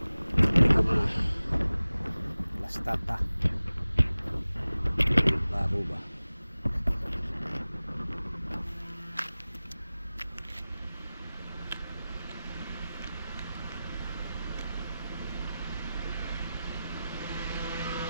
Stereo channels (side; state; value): both; inverted; correlation -0.96